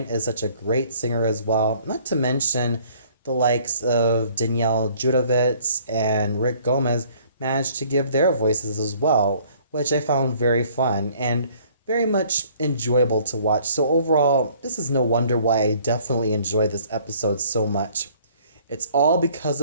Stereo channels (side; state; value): both; inverted; correlation -0.58